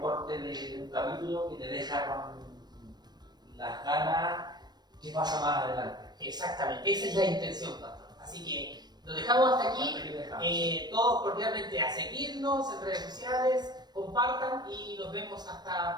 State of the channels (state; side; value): late; left; 0.20 ms